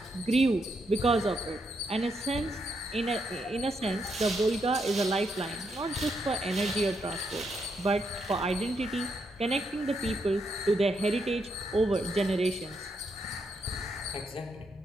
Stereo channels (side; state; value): both; normal; correlation 0.79